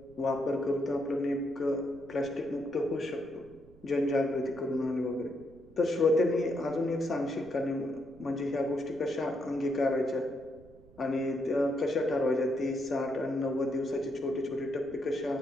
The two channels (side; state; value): right; noise; rumble, 24 dB below the sound